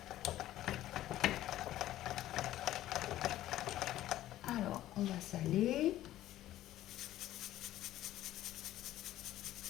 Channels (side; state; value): right; quieter; 14.0 dB